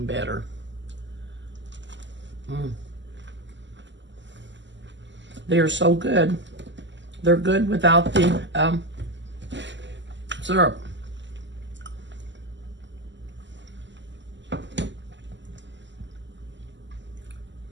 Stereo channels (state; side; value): late; left; 0.53 ms